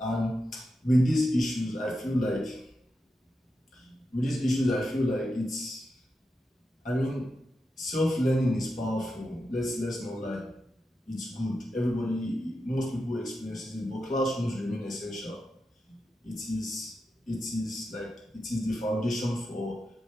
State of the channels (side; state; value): both; normal; correlation 0.88